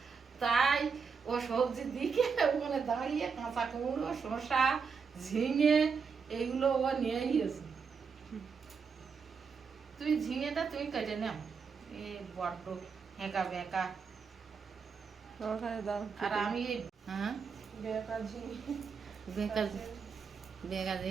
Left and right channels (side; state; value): left; quieter; 5.7 dB